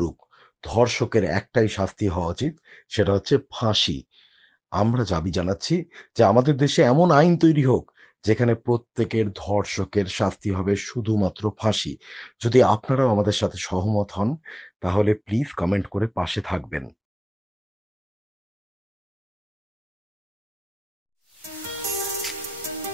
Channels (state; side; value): normal; both; correlation 0.98